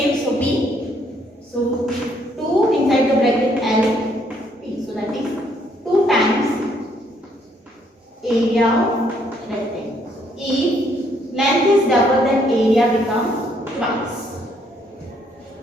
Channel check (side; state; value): both; normal; correlation 0.69